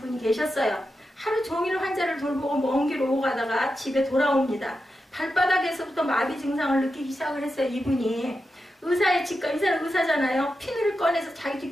계셨어요. 하루 종일 환자를 돌보고 먼 길 오고 가다가 집에 돌아옵니다. 발바닥에서부터 마비 증상을 느끼기 시작을 했어요. 이분이 의사의 직감, 이 사람 의사잖아요. 피누를 꺼내서 자기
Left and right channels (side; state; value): both; normal; correlation 0.89